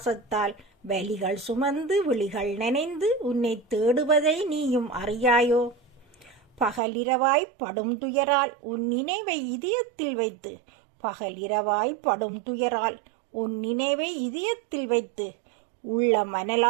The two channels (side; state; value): left; drops out; at 6.8 s